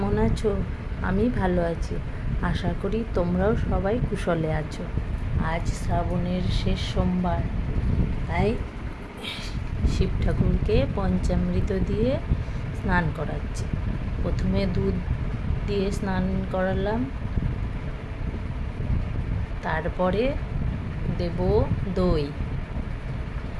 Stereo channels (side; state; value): both; identical; correlation 1.00